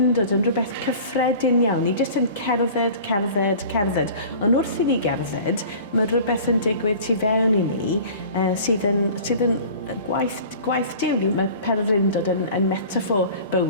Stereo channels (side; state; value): both; inverted; correlation -0.42